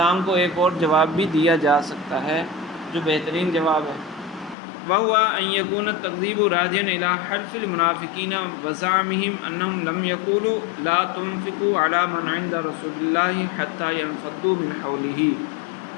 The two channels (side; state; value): right; drops out; at 4.5 s